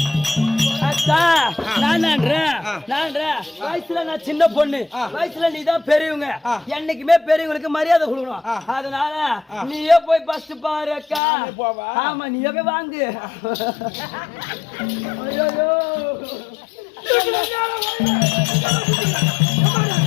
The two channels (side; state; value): right; drops out; at 11.2 s